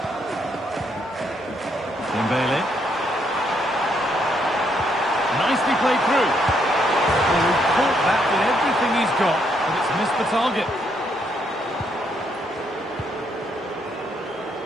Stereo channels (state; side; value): normal; both; correlation 0.74